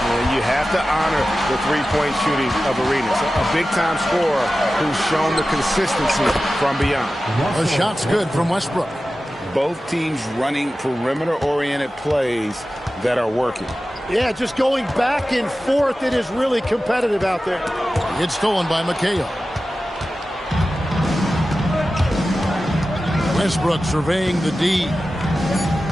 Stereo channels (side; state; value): both; normal; correlation 0.94